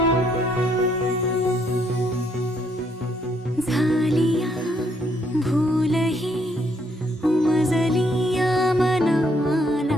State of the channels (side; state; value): both; normal; correlation 0.71